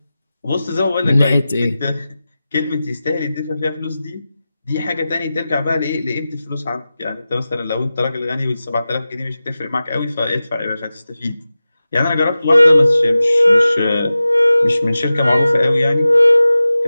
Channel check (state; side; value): inverted; both; correlation -0.95